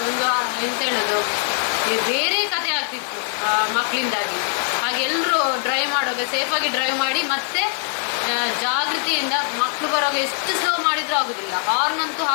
ಒಂದು ಎಂತ ಹೇಳೋದು, ಬೇರೆ ಕತೆ ಆಗ್ತಿತ್ತು ಮಕ್ಕಳಿಂದಾಗಿ. ಹಾಗೆ ಎಲ್ಲರೂ ಡ್ರೈವ್ ಮಾಡುವಾಗ ಸೇಫಾಗಿ ಡ್ರೈವ್ ಮಾಡಿ, ಮತ್ತೆ ಜಾಗೃತಿಯಿಂದ ಮಕ್ಕಳು ಬರುವಾಗ ಎಷ್ಟು ಸ್ಲೋ ಮಾಡಿದ್ರೂ ಆಗುದಿಲ್ಲ. ಹಾರ್ನ್ ಅಂತೂ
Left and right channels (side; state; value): right; silent; 64 dB below the other